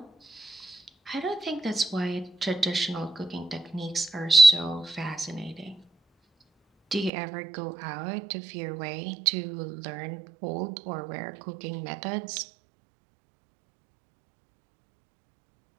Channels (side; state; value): left; drops out; at 7.1 s